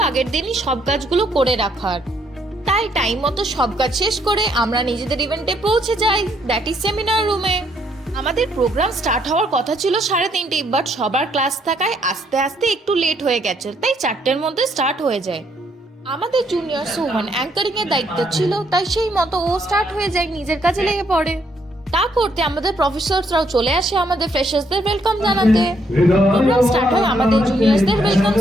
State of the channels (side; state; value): both; normal; correlation 0.71